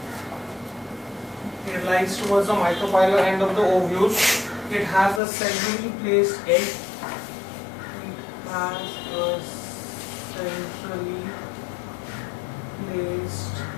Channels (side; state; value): right; drops out; at 5.2 s